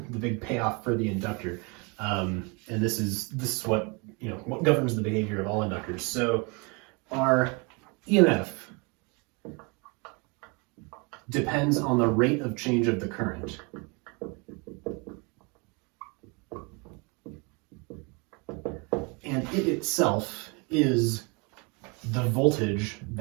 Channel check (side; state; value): left; quieter; 30.9 dB